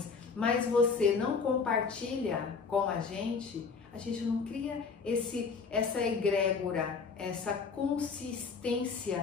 mas você não compartilha com a gente não cria essa egrégora, essa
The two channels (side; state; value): right; quieter; 5.1 dB